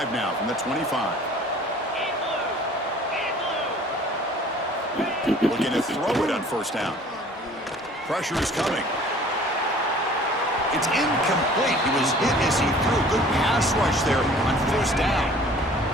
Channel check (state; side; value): normal; both; correlation 0.50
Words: now from the 25. Looking to throw it on first down. Pressure is coming. It's incomplete. He was hit as he threw. Good pass rush there on first down.